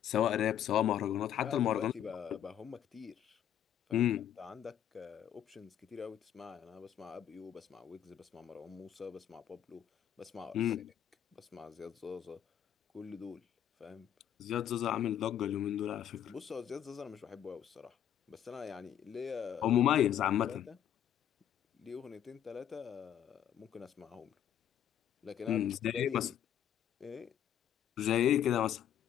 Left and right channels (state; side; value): quieter; right; 10.2 dB